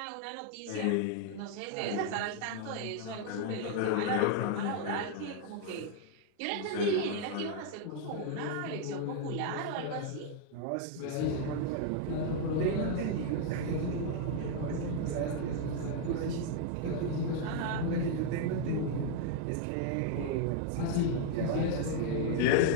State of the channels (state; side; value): different; both; correlation 0.00